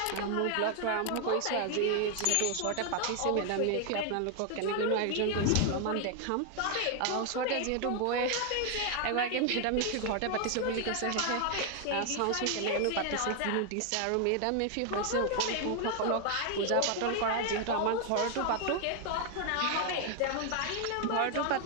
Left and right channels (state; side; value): different; both; correlation 0.00